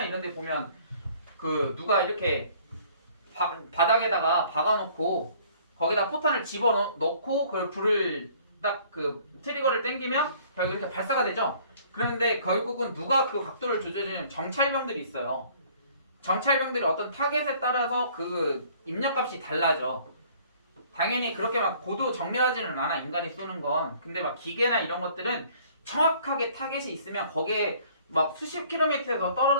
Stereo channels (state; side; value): inverted; both; correlation -0.56